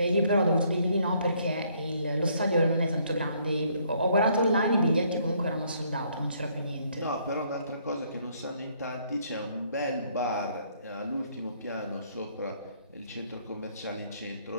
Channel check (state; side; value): inverted; both; correlation -0.67